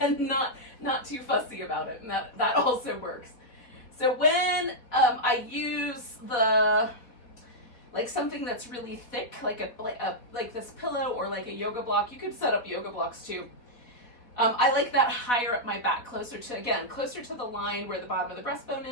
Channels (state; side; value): late; right; 4.1 ms